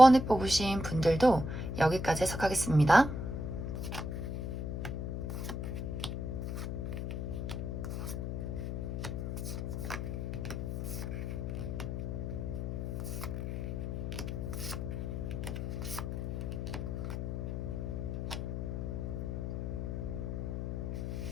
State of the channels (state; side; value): noise; left; hum, 3 dB below the sound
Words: 뽑으신 분들도 여기까지 해석하겠습니다.